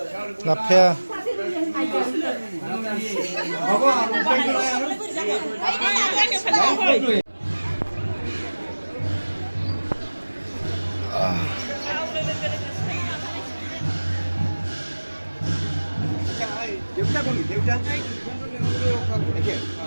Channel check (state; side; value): inverted; both; correlation -1.00